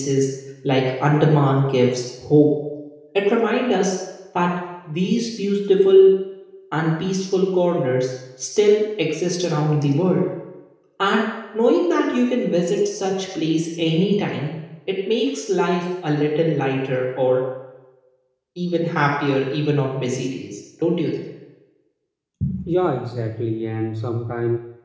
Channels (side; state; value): both; identical; correlation 1.00